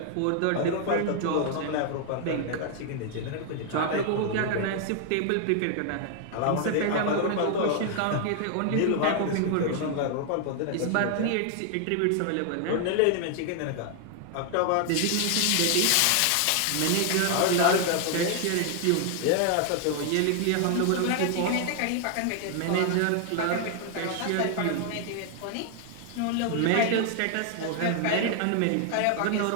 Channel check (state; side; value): different; both; correlation 0.00